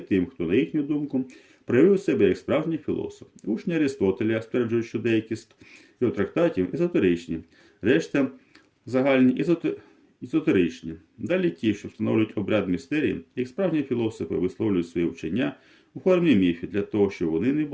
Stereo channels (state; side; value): identical; both; correlation 1.00